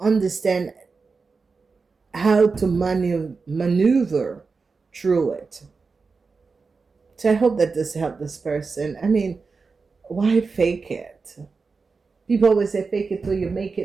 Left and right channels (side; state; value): left; quieter; 4.6 dB